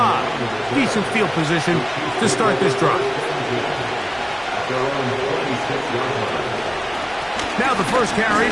Decent field position to start this drive. Now the first carry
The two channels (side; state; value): both; identical; correlation 1.00